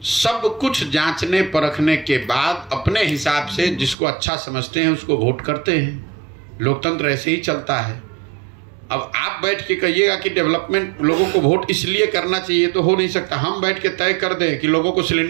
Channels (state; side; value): drops out; left; at 4.0 s